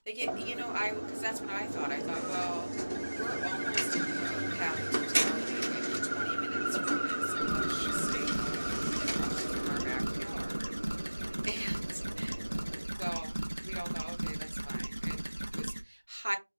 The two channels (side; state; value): both; inverted; correlation -1.00